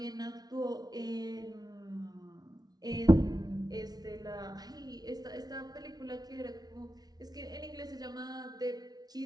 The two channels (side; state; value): left; late; 0.19 ms